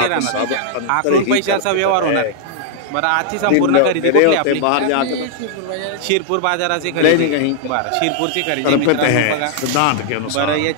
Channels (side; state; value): both; different; correlation -0.01